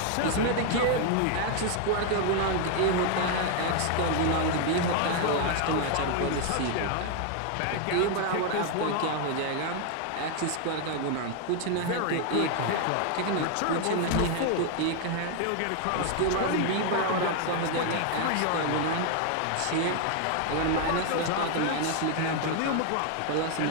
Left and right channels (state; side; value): different; both; correlation 0.00